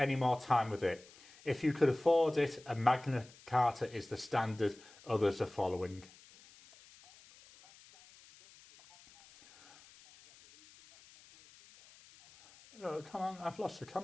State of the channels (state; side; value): noise; left; hiss, 24 dB below the sound